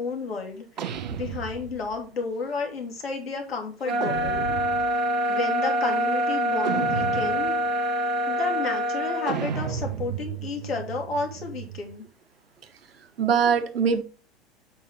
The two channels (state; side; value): normal; both; correlation 0.38